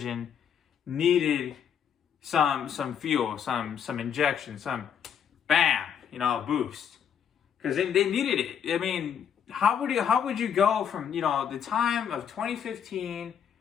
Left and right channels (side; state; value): right; quieter; 8.2 dB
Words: needed some fuel, some injection, some bam, boost. Because they needed it. How would you go from, the time of 2015